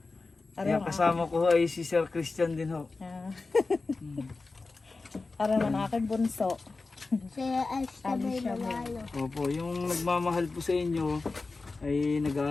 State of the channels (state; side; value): quieter; right; 3.7 dB